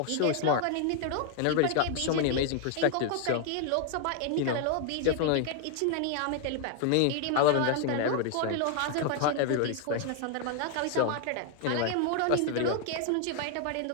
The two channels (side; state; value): both; different; correlation 0.00